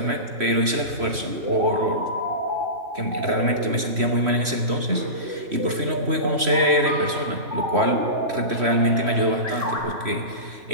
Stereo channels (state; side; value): late; left; 3.1 ms